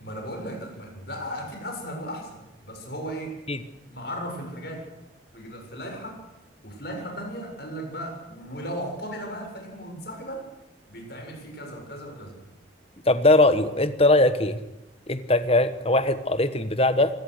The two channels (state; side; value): normal; both; correlation 0.24